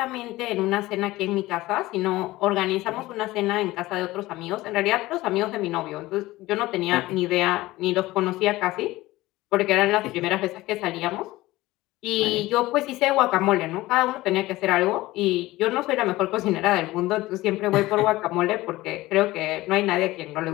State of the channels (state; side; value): quieter; right; 18.3 dB